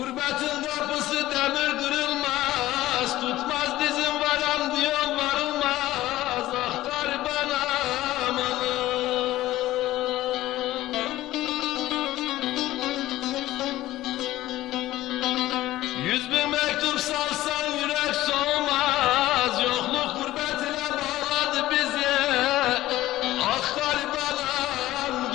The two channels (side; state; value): right; quieter; 15.8 dB